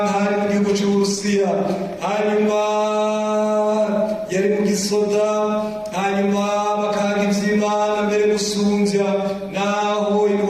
hari mu gihugu c'Uburusiya, hanyuma yari mu gisoda, hanyuma bakanga ivy'Imana mbere gusumvya, naho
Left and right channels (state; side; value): identical; both; correlation 1.00